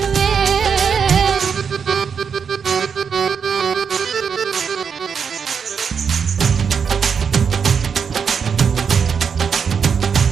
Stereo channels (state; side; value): quieter; left; 6.5 dB